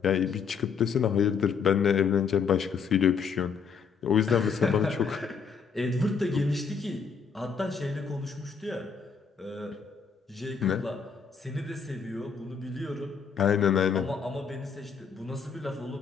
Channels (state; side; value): quieter; right; 6.0 dB